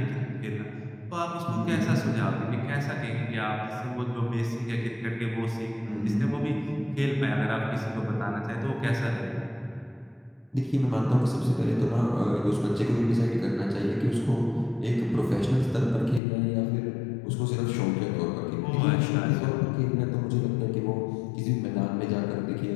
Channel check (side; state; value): right; drops out; at 16.2 s